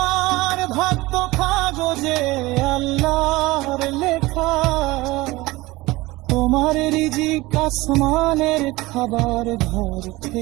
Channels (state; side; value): quieter; left; 20.3 dB